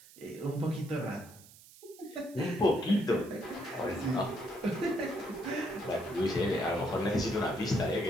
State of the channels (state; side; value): noise; right; hiss, 21 dB below the sound